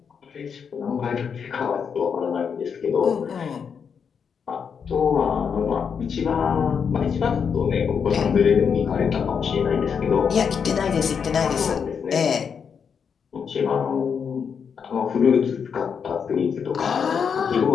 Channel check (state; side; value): quieter; right; 6.7 dB